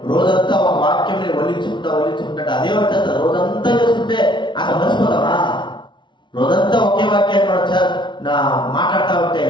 రోజంతా ఒక వాక్యం వల్లించుకుంటా అదే వచ్చేస్తా. రోజంతా చేసుకుంటే అసలు మర్చిపోతామా? రోజంతా ఒకే వాక్యాన్ని మనం మాట్లాడుతూ ఉంటే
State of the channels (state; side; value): late; right; 0.23 ms